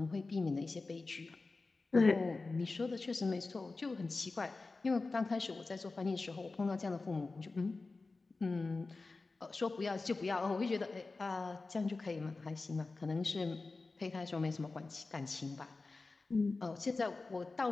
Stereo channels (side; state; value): right; quieter; 3.7 dB